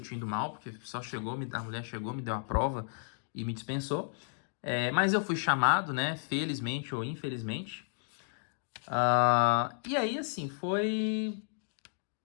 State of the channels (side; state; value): right; silent; digital silence